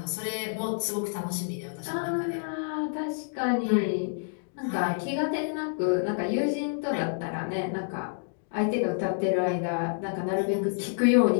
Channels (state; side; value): silent; right; digital silence